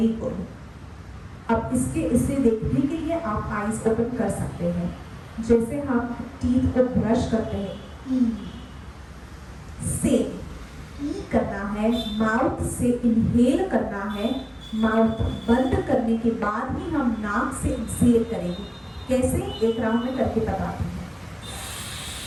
गुड। अब इसे देखने के लिए आप आईज ओपन कर सकते हैं। जैसे हम टीथ को ब्रश करते हैं, सेम करना है, माउथ से इनहेल करना है, माउथ बंद करने के बाद ही हम नाक से एक्सहेल करेंगे। कैसे, एक राउंड में करके बताते हैं।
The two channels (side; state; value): both; identical; correlation 1.00